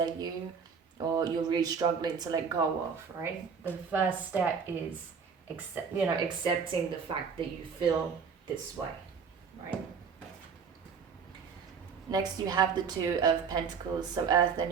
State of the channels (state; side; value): quieter; left; 6.1 dB